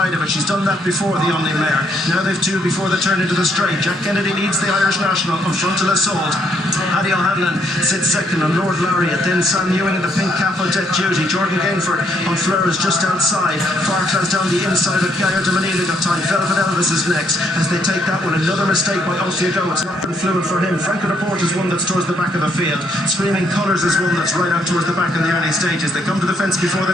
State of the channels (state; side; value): normal; both; correlation 0.71